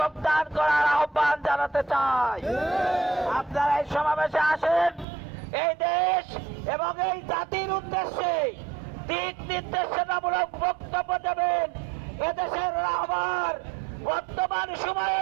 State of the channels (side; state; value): left; drops out; at 5.1 s